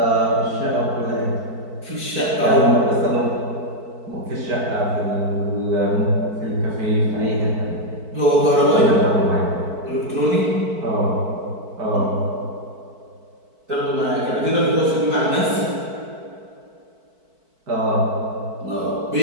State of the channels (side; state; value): left; late; 4.5 ms